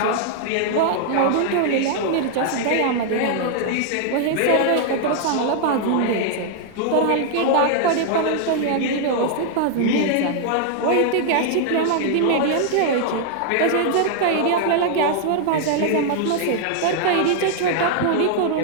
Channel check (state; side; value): different; both; correlation -0.01